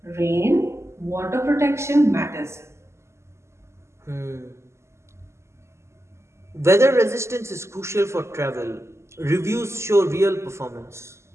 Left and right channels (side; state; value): left; late; 0.13 ms